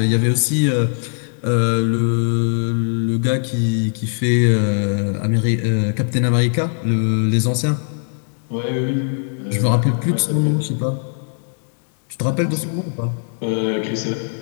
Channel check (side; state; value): right; silent; digital silence